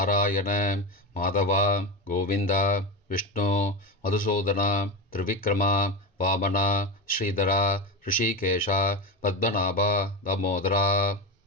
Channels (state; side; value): normal; both; correlation 0.19